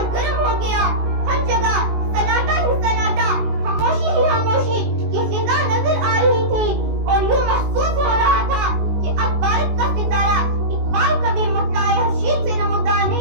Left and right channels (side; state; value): left; late; 19 ms